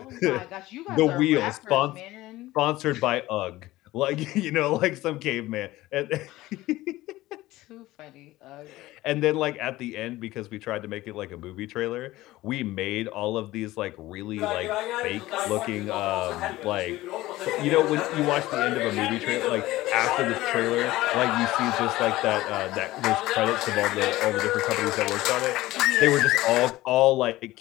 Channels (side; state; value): right; quieter; 17.4 dB